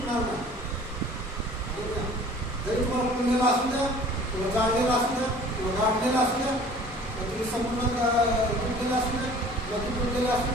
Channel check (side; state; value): both; normal; correlation 0.48